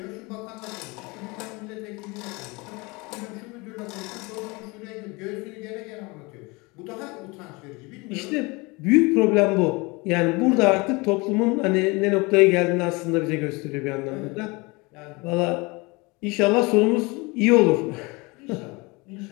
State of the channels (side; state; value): right; quieter; 25.9 dB